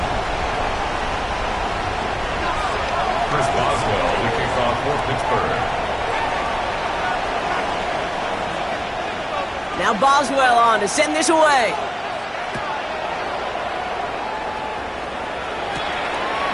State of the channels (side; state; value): both; identical; correlation 1.00